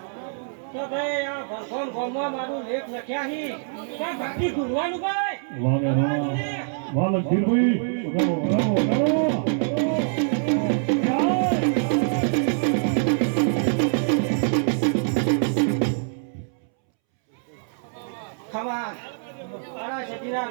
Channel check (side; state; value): left; silent; 62 dB below the other